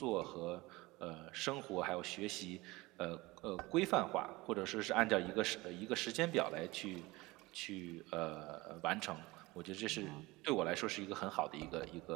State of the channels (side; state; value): left; quieter; 21.5 dB